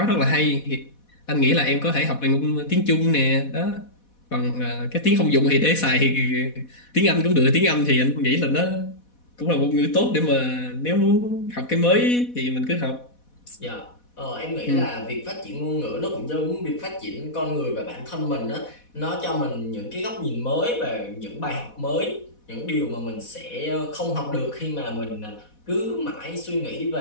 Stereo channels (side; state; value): right; late; 4.1 ms